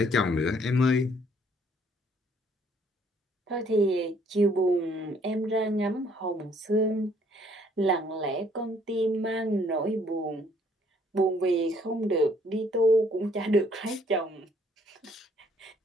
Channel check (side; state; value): both; normal; correlation 0.63